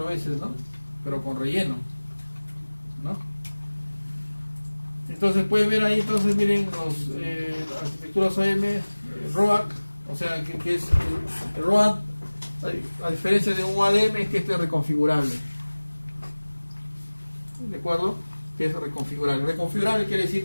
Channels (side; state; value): both; inverted; correlation -1.00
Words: veces, ¿no? Pero con relleno, ¿no? Entonces pueden ver ahí, entonces miren las arquitecturas OM, ROAD, o sea que es el ROAD, a diferencia de un ADM, es que este es reconfigurable. ¿De acuerdo? Que es reconfigurable. Reconfigurable quiere